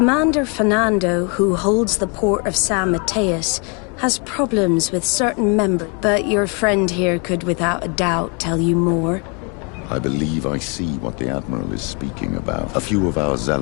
Fernando, who holds the port of San Mateus, has problems with certain members. But your friend here could without a doubt tell you more. I believe I see what the Admiral is speaking about. A few of our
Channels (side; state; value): right; quieter; 34.2 dB